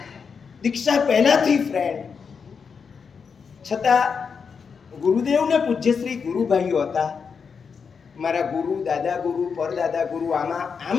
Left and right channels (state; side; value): quieter; right; 5.9 dB